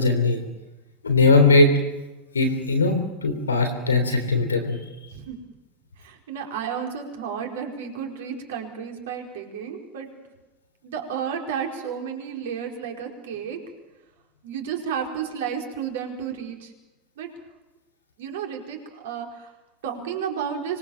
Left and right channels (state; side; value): inverted; both; correlation -0.43